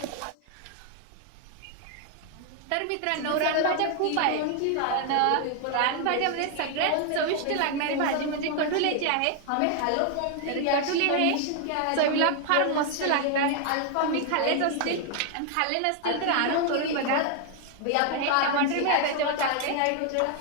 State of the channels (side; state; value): both; different; correlation 0.00